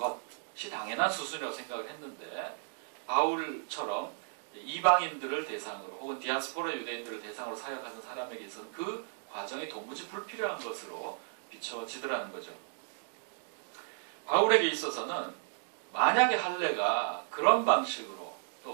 당연한 수순이라고 생각을 했는데 바울처럼 이방인들을 대상으로 혹은 디아스포라 유대인들을 대상으로 사역하는 사람에게 있어서는 그 과정이 도무지 불필요한 것으로 비춰지더라는 거죠. 바울에게 있어서는 만약에 할례가 그런 방식으로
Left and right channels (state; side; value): silent; left; digital silence